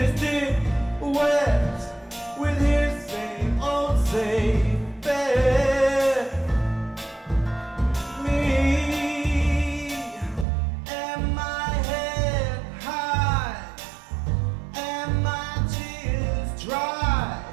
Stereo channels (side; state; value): left; drops out; at 10.5 s